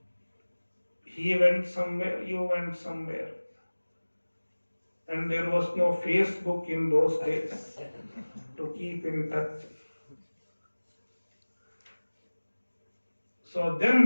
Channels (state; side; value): inverted; both; correlation -1.00